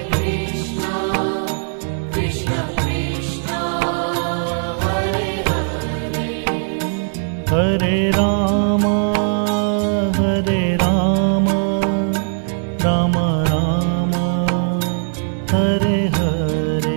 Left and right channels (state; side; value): silent; left; digital silence